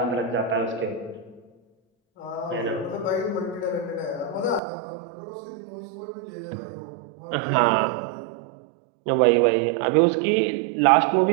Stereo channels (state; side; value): drops out; left; at 4.6 s